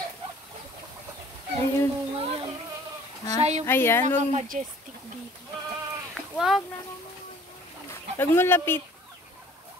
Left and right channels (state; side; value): normal; both; correlation 0.53